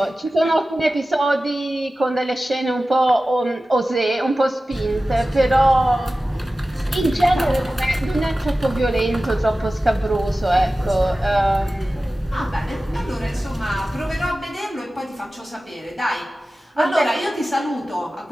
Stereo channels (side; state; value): both; normal; correlation 0.95